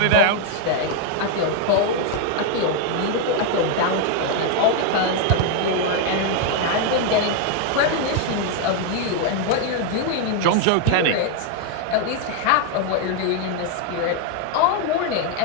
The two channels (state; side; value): different; both; correlation 0.01